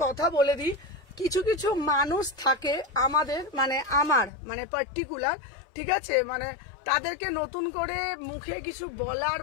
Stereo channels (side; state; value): right; drops out; at 4.3 s